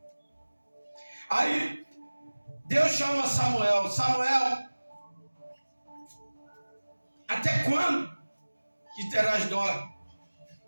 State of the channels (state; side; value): inverted; both; correlation -1.00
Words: Aí, Deus chama Samuel. Samuel, até quando que terás dó